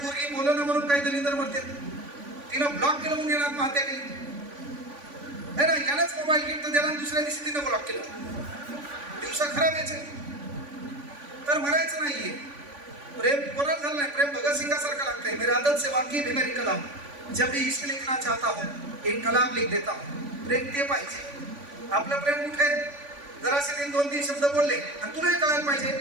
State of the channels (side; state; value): left; late; 3.5 ms